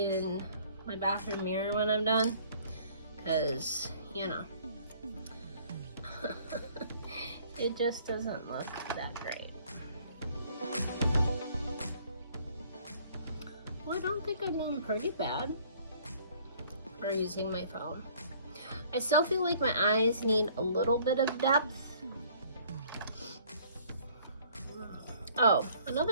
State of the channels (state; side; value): inverted; both; correlation -0.57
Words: my bathroom mirror when I'm done, because, you know, it just doesn't look that great. Well, I don't think I'm doing pretty bad for using my phone. I still feel like my eyes need a little bit of depth. Oh,